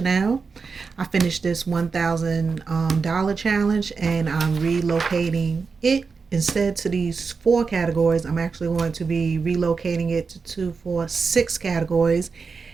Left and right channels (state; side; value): quieter; left; 4.9 dB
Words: I finished this $1,000 challenge and I'm relocating it instead to these 4 categories. I'm actually going to be relocating it to 2, 4, 6 categories.